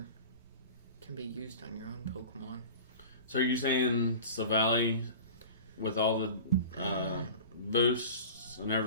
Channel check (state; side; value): inverted; both; correlation -0.37